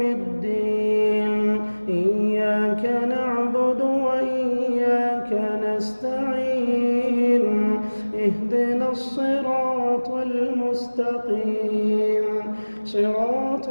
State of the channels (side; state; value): both; inverted; correlation -1.00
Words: الدين إياك نعبد وإياك نستعين اهدنا الصراط المستقيم صراط